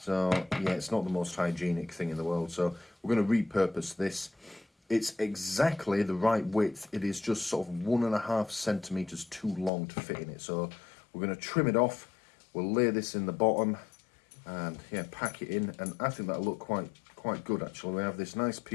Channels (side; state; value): right; drops out; at 9.7 s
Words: yeah, it's not the most hygienic thing in the world. So we're going to repurpose this. It's exactly the right width. It is just sort of 1.5 centimeters too long to fit in it. So we're going to trim it off. We'll lay this in the bottom, and yeah, pack it in. And I think that'll look quite good actually. We have this nice